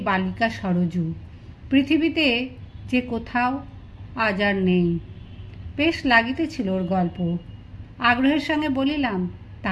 বালিকা সরজু, পৃথিবীতে যে কোথাও আজ আর নেই। বেশ লাগিতেছিল ওর গল্প। আগ্রহের সঙ্গে বলিলাম,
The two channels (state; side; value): identical; both; correlation 1.00